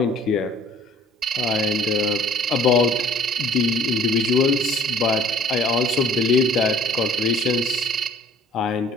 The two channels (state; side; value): normal; both; correlation 0.54